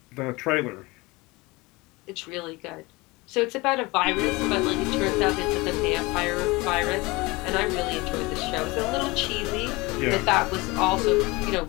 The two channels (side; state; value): right; quieter; 23.4 dB